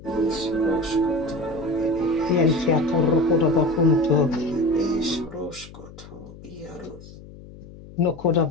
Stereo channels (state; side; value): noise; left; hum, 18 dB below the sound